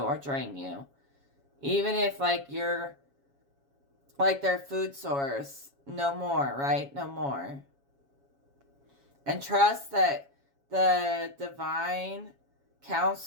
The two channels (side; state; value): left; late; 7.2 ms